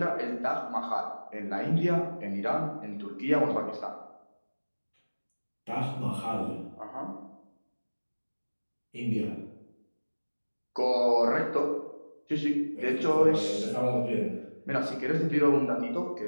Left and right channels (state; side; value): inverted; both; correlation -1.00